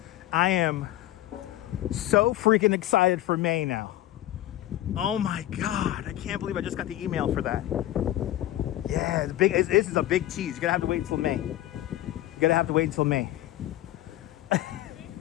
I am so freaking excited for May now. Oh my God, I can't believe I just got the email for that. Yeah, this is a big tease. You're gonna have to wait until May. You're gonna have to wait until May.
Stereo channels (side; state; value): right; quieter; 14.4 dB